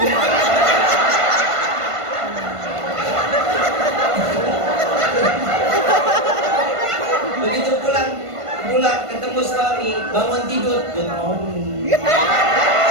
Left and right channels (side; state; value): left; late; 1.5 ms